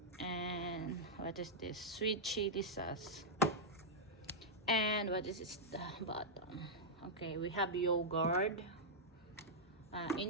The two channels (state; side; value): normal; both; correlation -0.07